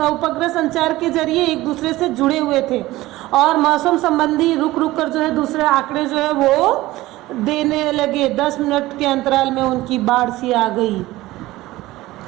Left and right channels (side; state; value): left; quieter; 17.7 dB